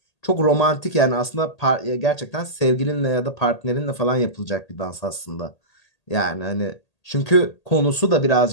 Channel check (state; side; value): late; right; 1.8 ms